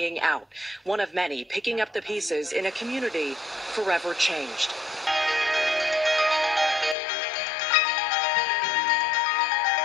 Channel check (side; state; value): right; drops out; at 7.0 s